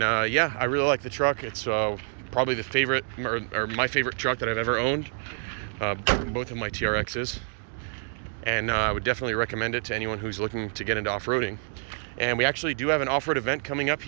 yeah, I really like the truck. It's probably the favorite, or my favorite truck that I've ever owned. Both of my TRXs. And I would definitely recommend it to anyone who's looking to get into off-roading. And we actually do have an off-road event coming up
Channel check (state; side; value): silent; left; 60 dB below the other